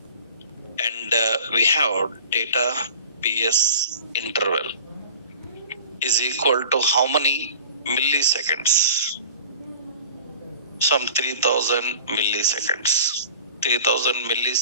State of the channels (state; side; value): inverted; both; correlation -0.43